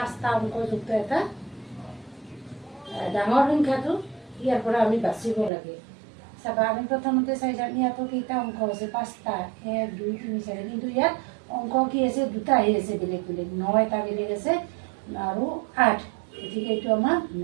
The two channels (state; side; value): drops out; left; at 5.5 s